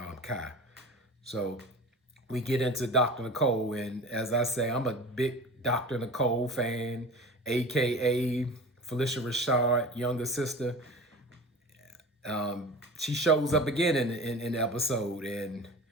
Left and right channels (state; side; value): normal; both; correlation 0.35